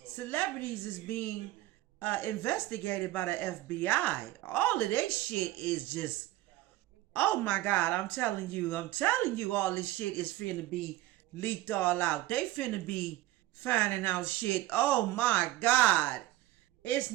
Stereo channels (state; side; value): quieter; left; 16.3 dB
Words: celebrities is being investigated by the FBI. All of this shit is just, oh my God, I'm telling you, all this shit is finna be leaked all out. They finna be finding out shit. Oh my God. It's